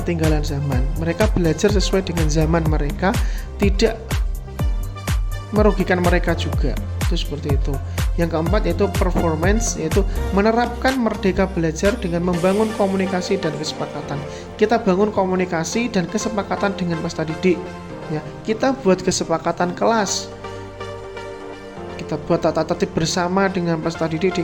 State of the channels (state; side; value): identical; both; correlation 1.00